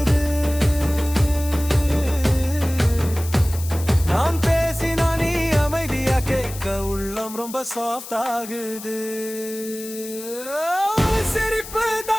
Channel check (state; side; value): noise; left; hiss, 13 dB below the sound